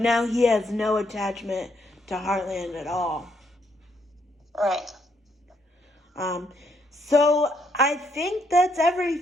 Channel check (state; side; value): normal; both; correlation 0.73